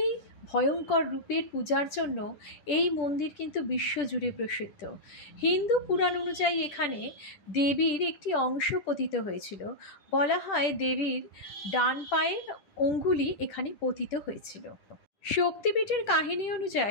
ভয়ঙ্কর রূপের পূজার জন্য এই মন্দির কিন্তু বিশ্বজুড়ে প্রসিদ্ধ। হিন্দু পুরাণ অনুযায়ী এখানে দেবীর একটি অংশ পতিত হয়েছিল। বলা হয় দেবীর ডান পায়ের অঙ্গুলি এখানে পতিত হয়েছিল। শক্তিপীঠের কাহিনী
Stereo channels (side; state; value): right; late; 10 ms